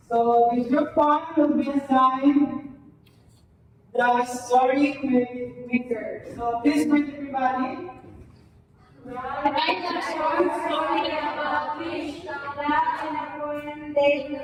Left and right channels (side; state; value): both; identical; correlation 1.00